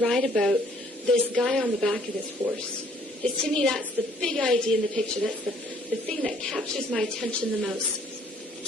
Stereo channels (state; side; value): normal; both; correlation 0.61